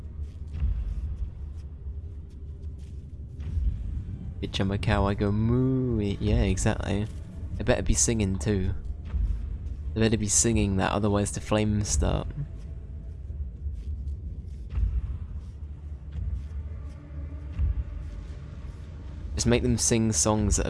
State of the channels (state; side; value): identical; both; correlation 1.00